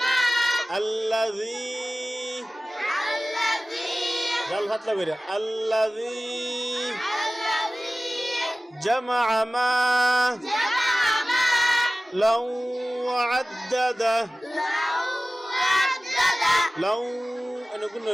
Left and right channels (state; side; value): normal; both; correlation 0.97